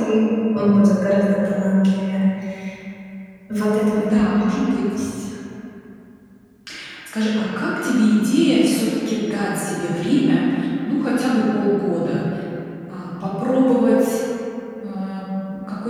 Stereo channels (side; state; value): both; identical; correlation 1.00